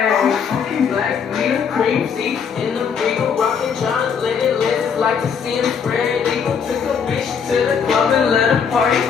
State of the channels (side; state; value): right; quieter; 6.7 dB